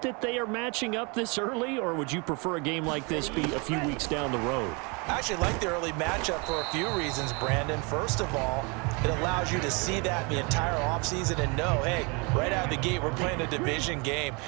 that they are matching up this early, or would you prefer a game like this be a few weeks down the road? I actually like the early matchup for a few reasons, Brandon. First of all, it allows you to see that the entire offseason and know, hey, right out of the gate, we're playing a division game.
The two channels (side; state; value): left; quieter; 30.7 dB